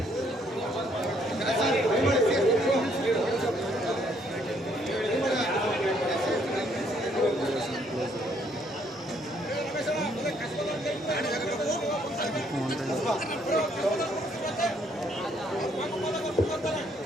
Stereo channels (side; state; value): both; normal; correlation 0.68